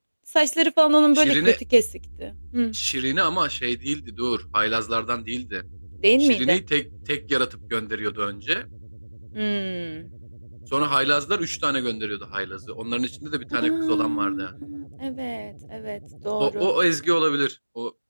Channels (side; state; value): both; inverted; correlation -1.00